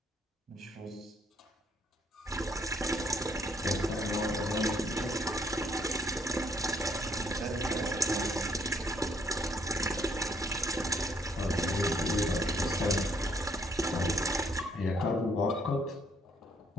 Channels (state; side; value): normal; both; correlation 0.69